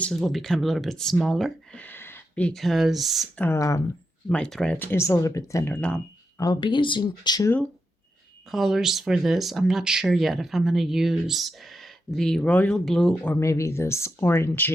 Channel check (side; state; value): both; normal; correlation 0.85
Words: will become a little bit smaller because my thread is a little bit thinner. Now, I'll be using 2 colors for this. I'm not sure yet if I'm going to use the royal blue or maybe this